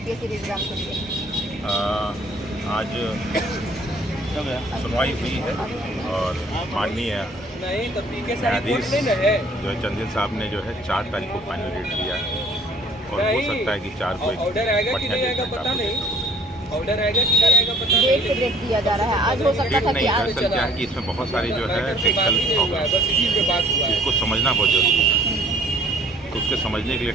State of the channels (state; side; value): normal; both; correlation 0.55